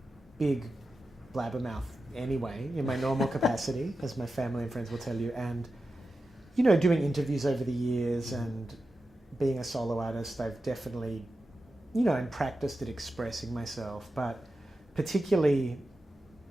big blabbermouth anyway in my normal capacity, as my family and friends will tell you, and doing interviews over the years and being a solo artist, I've definitely, and practiced at expressing myself, but particularly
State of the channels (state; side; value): normal; both; correlation 0.91